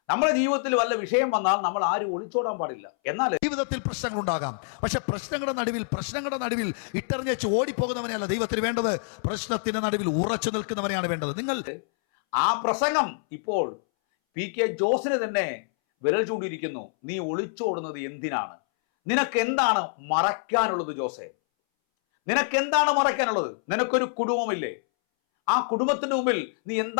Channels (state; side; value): silent; right; 61 dB below the other